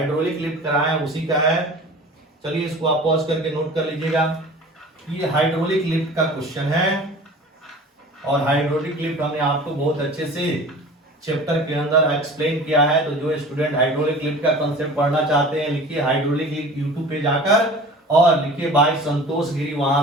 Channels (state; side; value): normal; both; correlation 0.41